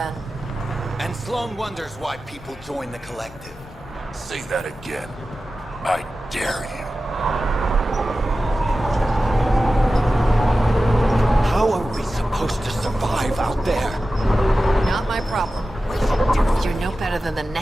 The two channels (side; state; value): both; normal; correlation 0.94